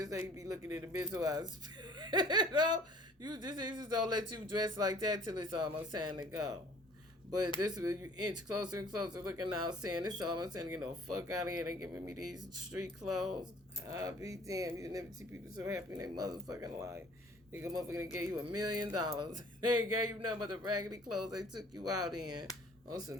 ain't be looking in the mental hospital. You just don't let you dress like that till it's almost time to go. But this is you inch closer and closer looking out saying it's almost time to get the fuck out of here. They giving me these street clothes. I'll be damned. You never see people so happy in their motherfucking life. Nigga motherfucker gave you $1 million. They ain't gave you nothing but the raggedy clothes they took you out in on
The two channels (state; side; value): normal; both; correlation 0.52